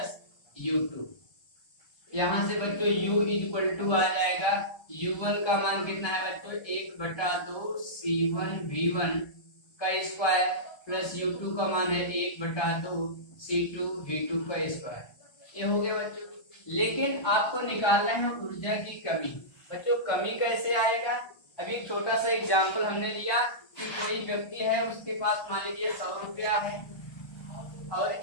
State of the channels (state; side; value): late; right; 1.3 ms